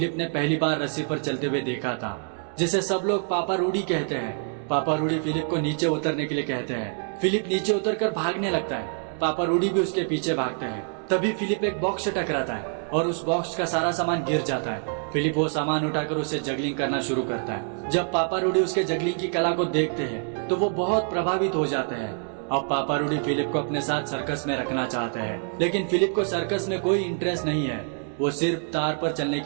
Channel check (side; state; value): left; silent; 56 dB below the other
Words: ने पहली बार रस्सी पर चलते हुए देखा था, जिसे सब लोग पापा रूडी कहते हैं। पापा रूडी फिलिप को नीचे उतरने के लिए कहते हैं। फिलिप नीचे उतरकर भागने लगता है। पापा रूडी भी उसके पीछे भागते हैं। तभी फिलिप एक बॉक्स से टकराता है और उस बॉक्स का सारा सामान गिर जाता है। फिलिप वो सामान उठाकर उसे जगलिंग करना शुरू करता है। जब पापा रूडी उसके जगलिंग की कला को देखते हैं तो वो बहुत प्रभावित हो जाते हैं। अब पापा रूडी फिलिप को अपने साथ सर्कस में रखना चाहते हैं, लेकिन फिलिप को सर्कस में कोई इंटरेस्ट नहीं है। वो सिर्फ तार पर चलने